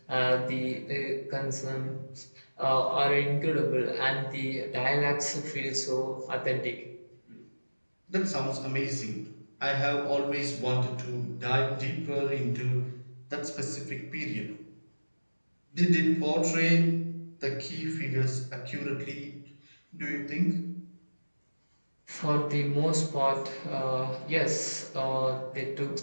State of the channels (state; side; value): inverted; both; correlation -1.00